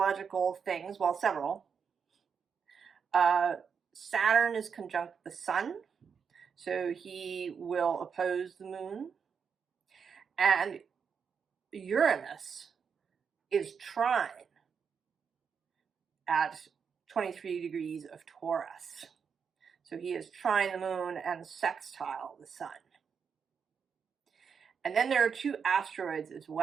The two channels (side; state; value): left; quieter; 6.4 dB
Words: things, well, several. Saturn is conjunct the sun, so he will oppose the moon. And Uranus is trine at 23 degrees of Taurus. So he is trine the moon and sextile the sun. And then there are two asteroids as